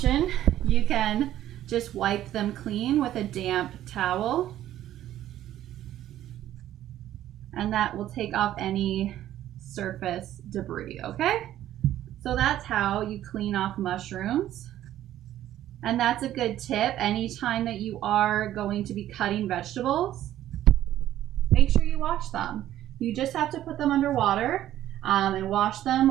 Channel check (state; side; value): quieter; left; 12.7 dB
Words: You can just wipe them clean with a damp towel, and that will take off any surface debris, okay? So that's how you clean off mushrooms. And that's a good tip anytime that you are going to be cutting vegetables. Make sure you wash them. You just have to put them under water and wash them,